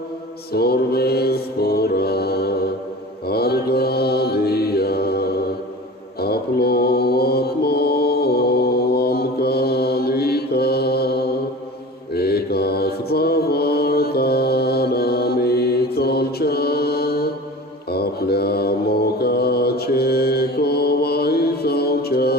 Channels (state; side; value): normal; both; correlation 0.37